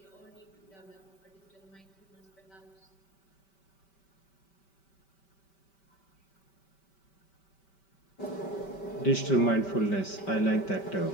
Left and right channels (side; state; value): right; late; 5.2 ms